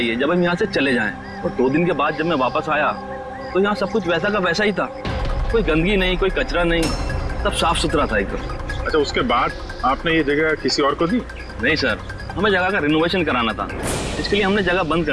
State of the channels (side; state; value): both; identical; correlation 1.00